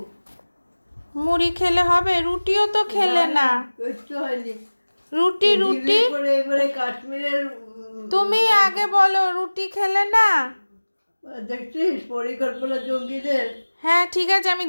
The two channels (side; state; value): both; inverted; correlation -1.00